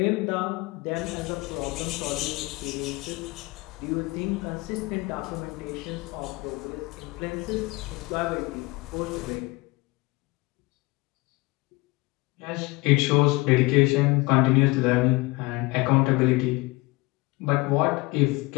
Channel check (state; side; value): quieter; right; 23.3 dB